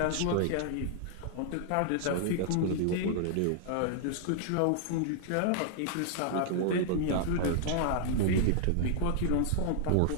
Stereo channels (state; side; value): different; both; correlation -0.01